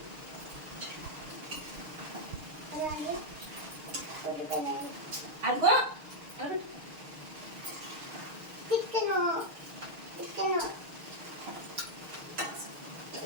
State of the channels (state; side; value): late; left; 6.5 ms